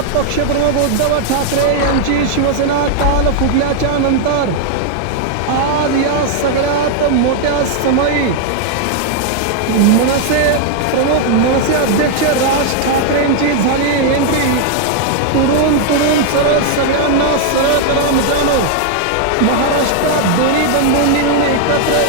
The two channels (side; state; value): both; different; correlation 0.00